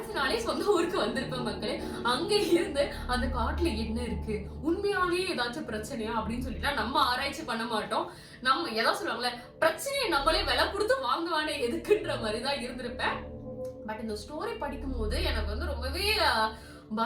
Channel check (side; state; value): both; identical; correlation 1.00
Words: நாளே சொந்த ஊருக்கு வந்திருப்பேன் மக்களே. அங்க இருந்து அந்த காட்டுல என்ன இருக்கு, உண்மையாலேயே ஏதாச்சும் பிரச்சனையா அப்படின்னு சொல்லிட்டு நம்ம ஆராய்ச்சி பண்ண மாட்டோம். நம்ம எதாவது சொல்லுவாங்களே, பிரச்சனையை நம்மளே விலை கொடுத்து வாங்குவானே எதுக்குன்ற மாதிரிதான் இருந்திருப்பேன். பட் இந்த ஸ்டோரி படிக்கும் போது எனக்கு வந்து ரொம்பவே